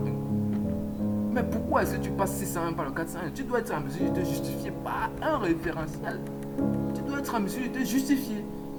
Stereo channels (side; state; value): both; identical; correlation 1.00